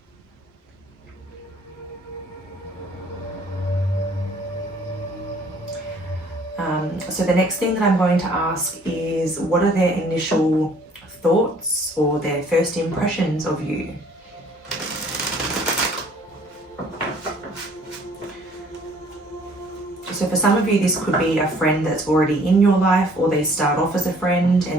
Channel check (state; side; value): normal; both; correlation 0.57